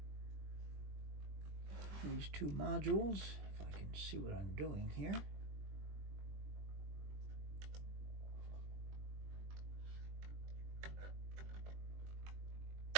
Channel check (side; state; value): left; late; 20 ms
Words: these two modules, if I can see what I'm doing here.